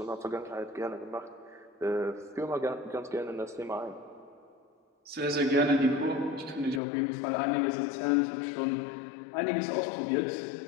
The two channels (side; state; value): right; drops out; at 6.8 s